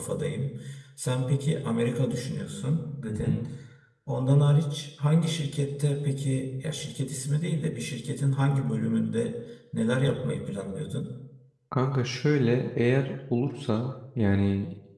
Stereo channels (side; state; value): both; identical; correlation 1.00